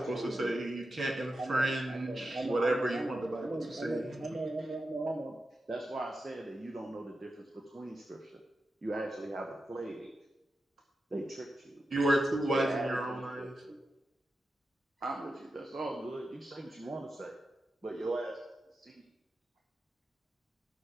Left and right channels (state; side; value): normal; both; correlation 0.90